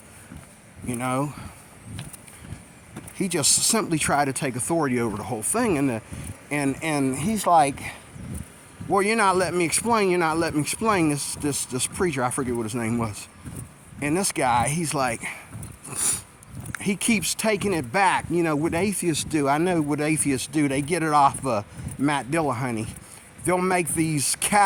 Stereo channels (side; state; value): both; identical; correlation 1.00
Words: You know, he just simply tried to take authority over the whole thing. And he's like, well, you're not letting me explain. You're not letting me explain. This preacher, I forget what his name was. And this guy, he's like, he keeps taking it back. You know, what atheists do, I know what atheists do. They get it off Matt Dillahunty. They'll make these